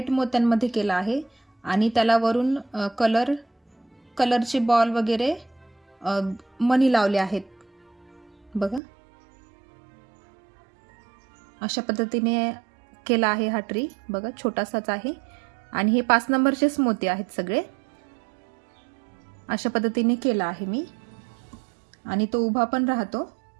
मोत्यांमध्ये केला आहे आणि त्याला वरून कलरचे बॉल वगैरे मनी लावले आहेत। बघा अशा पद्धतीने केला आहे हा ट्री। बघा छोटासाच आहे आणि हे 5 नंबरचेच मोती आहेत सगळे। अशा पद्धतीने केला आहे मी आणि तो उभा पण राहतो।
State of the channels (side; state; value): left; drops out; at 8.8 s